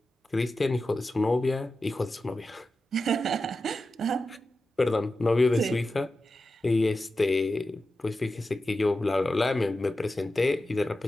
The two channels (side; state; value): both; normal; correlation 0.92